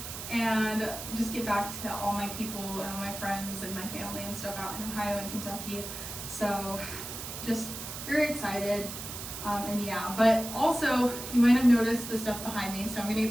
and just get back to all my people and all my friends and my family and stuff out in Ohio and Kentucky. So just very excited. And yeah, but also you might have noticed the stuff behind me, so I'm gonna get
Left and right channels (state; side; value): noise; right; hiss, 8 dB below the sound